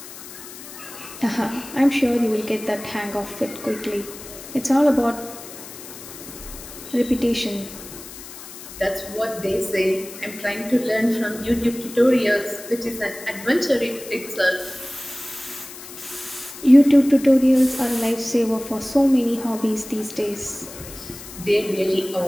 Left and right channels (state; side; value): noise; left; hiss, 14 dB below the sound